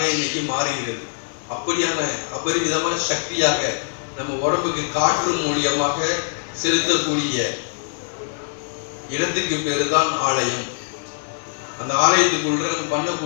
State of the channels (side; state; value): right; silent; digital silence